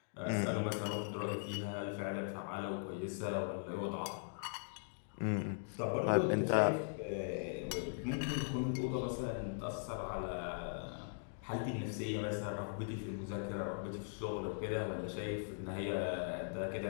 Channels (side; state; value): right; silent; digital silence